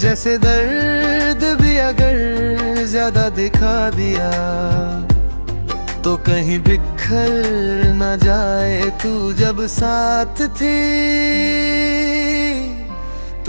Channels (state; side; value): inverted; both; correlation -1.00